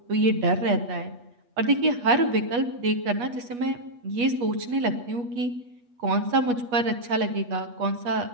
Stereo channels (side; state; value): left; late; 8.3 ms